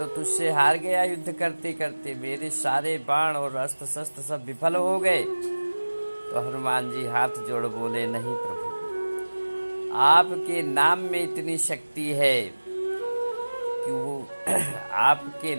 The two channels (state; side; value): inverted; both; correlation -1.00